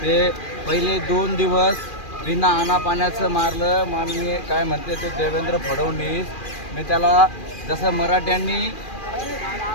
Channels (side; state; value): right; late; 2.4 ms